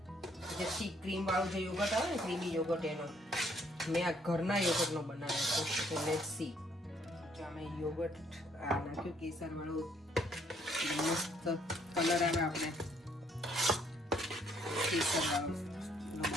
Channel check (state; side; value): normal; both; correlation 0.66